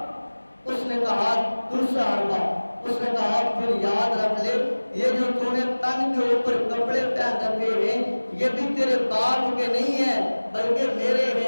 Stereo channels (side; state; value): both; inverted; correlation -1.00